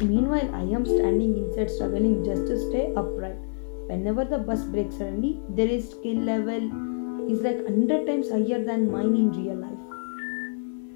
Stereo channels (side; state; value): right; silent; digital silence